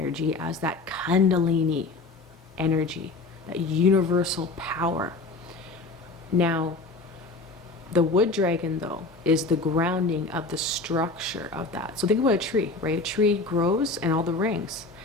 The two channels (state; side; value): quieter; right; 3.5 dB